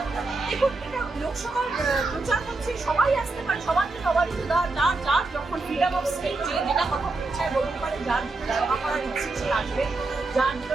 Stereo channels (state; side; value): quieter; left; 3.4 dB